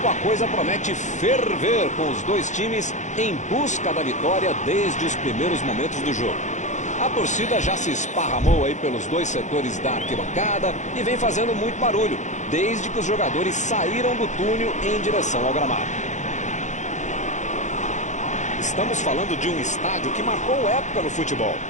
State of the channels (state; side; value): late; right; 0.35 ms